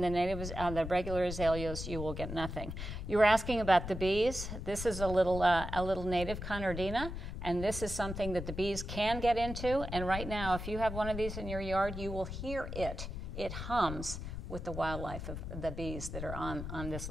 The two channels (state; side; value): noise; left; rumble, 7 dB below the sound